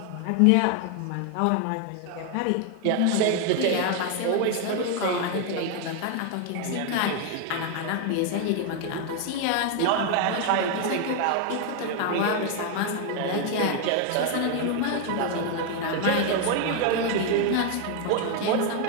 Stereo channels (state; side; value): different; both; correlation 0.01